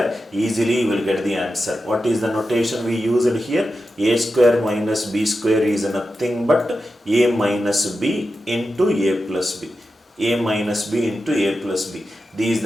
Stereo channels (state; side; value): normal; both; correlation 0.90